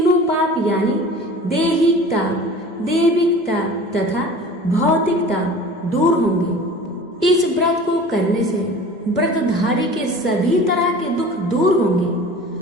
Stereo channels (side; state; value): both; normal; correlation 0.41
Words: पाप यानी दैहिकता, दैविकता तथा भौतिकता दूर होंगे। इस व्रत को करने से व्रतधारी के सभी तरह के दुख दूर होंगे